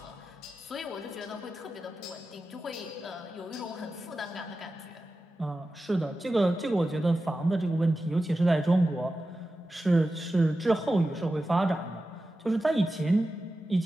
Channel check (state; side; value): normal; both; correlation 0.93